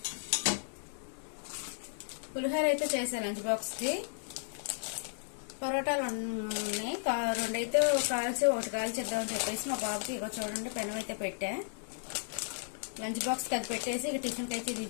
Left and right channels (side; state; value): right; silent; digital silence